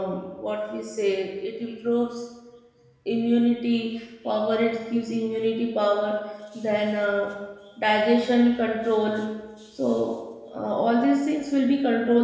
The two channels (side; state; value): both; identical; correlation 1.00